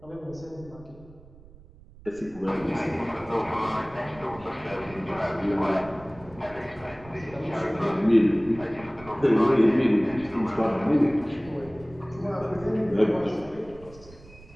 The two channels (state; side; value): noise; right; rumble, 21 dB below the sound